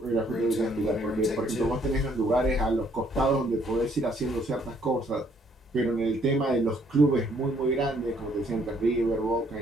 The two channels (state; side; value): normal; both; correlation 0.66